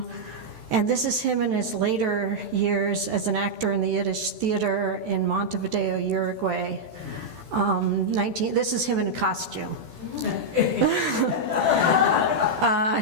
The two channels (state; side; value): late; left; 14 ms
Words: this is him in his later years as an actor in the Yiddish theater in Montevideo, Uruguay. This is him in a costume.